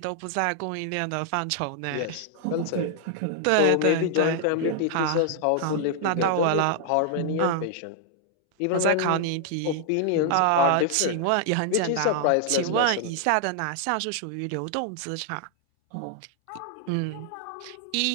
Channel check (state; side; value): different; both; correlation 0.00